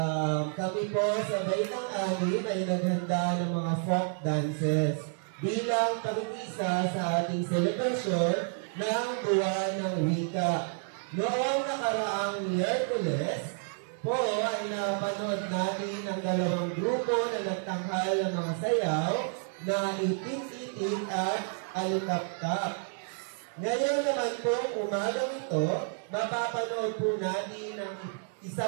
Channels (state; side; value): silent; left; 58 dB below the other